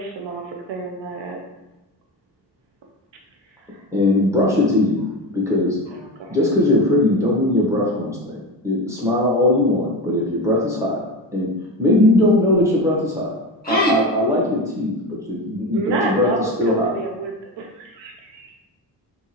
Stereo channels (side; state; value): both; normal; correlation 0.23